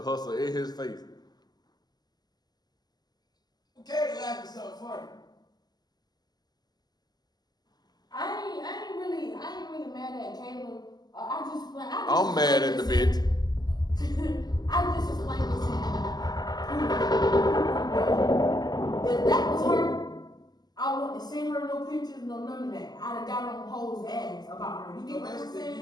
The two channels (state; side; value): late; right; 0.20 ms